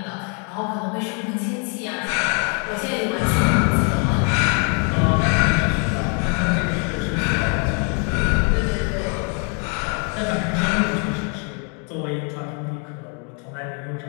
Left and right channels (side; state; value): right; quieter; 38.6 dB